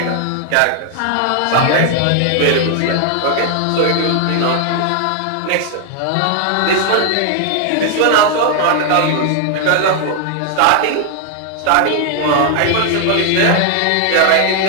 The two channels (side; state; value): both; different; correlation 0.00